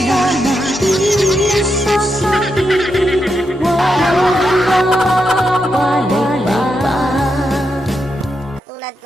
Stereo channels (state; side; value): normal; both; correlation 0.84